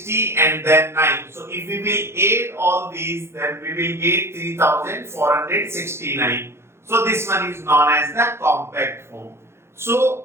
and then 9. So if we will add all these, then we will get 3469. So this one is known as the compact form.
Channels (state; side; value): late; left; 0.12 ms